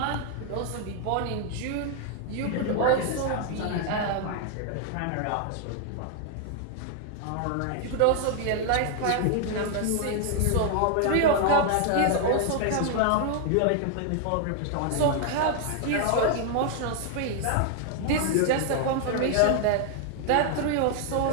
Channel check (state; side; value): different; both; correlation 0.00